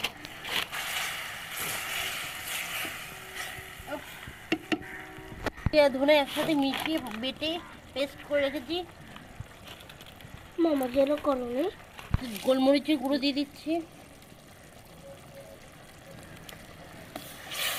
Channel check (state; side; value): identical; both; correlation 1.00